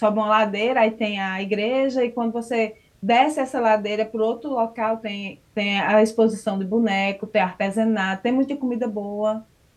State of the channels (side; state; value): both; identical; correlation 1.00